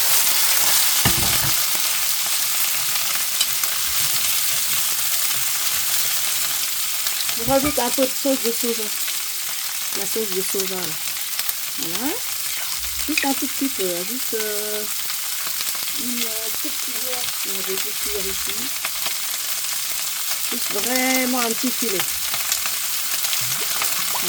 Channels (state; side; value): identical; both; correlation 1.00